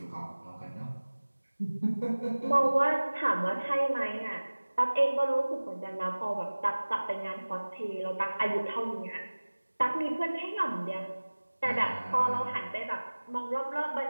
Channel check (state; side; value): inverted; both; correlation -1.00